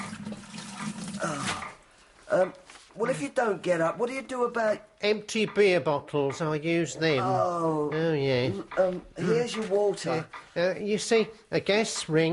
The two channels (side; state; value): both; identical; correlation 1.00